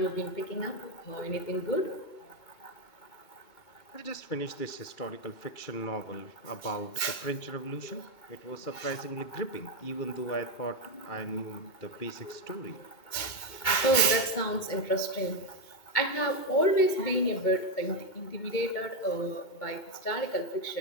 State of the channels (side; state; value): right; late; 2.2 ms